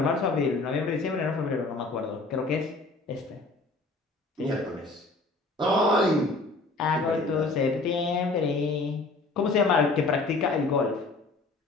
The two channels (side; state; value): right; quieter; 3.3 dB